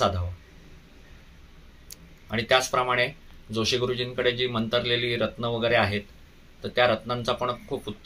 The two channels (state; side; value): identical; both; correlation 1.00